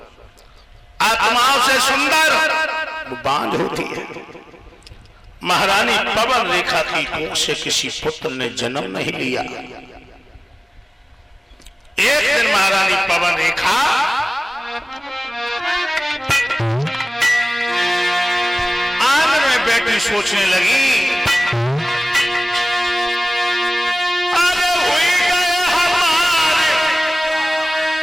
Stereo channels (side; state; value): both; normal; correlation 0.98